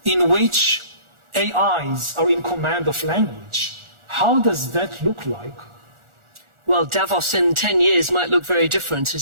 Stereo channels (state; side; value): late; left; 1.4 ms